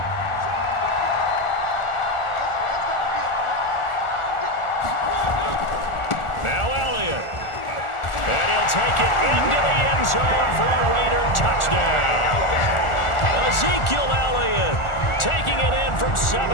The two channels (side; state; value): right; late; 1.4 ms